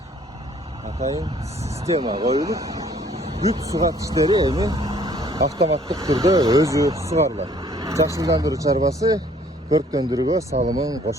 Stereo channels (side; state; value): both; normal; correlation 0.59